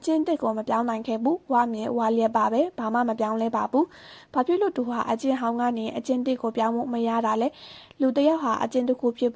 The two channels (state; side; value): identical; both; correlation 1.00